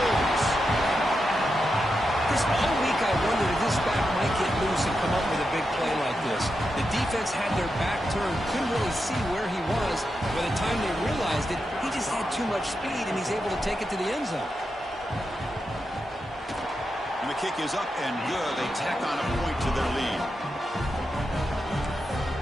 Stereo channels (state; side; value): normal; both; correlation 0.87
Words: Chris, all week I wondered if this back might get loose and come up with a big play like this. The defense had their back turned, couldn't really see where he was. By the time they realized it, he just had too much speed, and he's able to take it to the end zone. And the kick is up and good. They tack on a point to their lead.